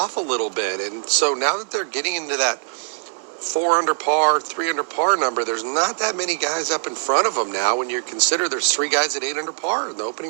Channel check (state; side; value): silent; left; digital silence